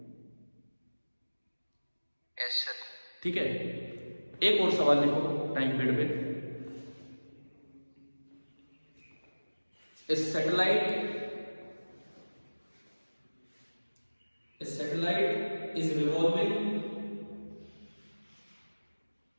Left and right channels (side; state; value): both; inverted; correlation -1.00